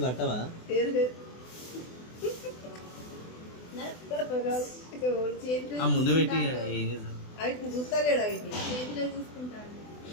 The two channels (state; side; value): late; right; 24 ms